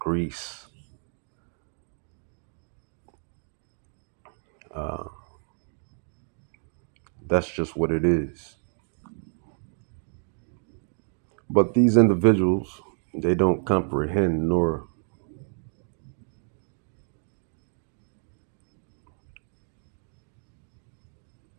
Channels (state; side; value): silent; left; 58 dB below the other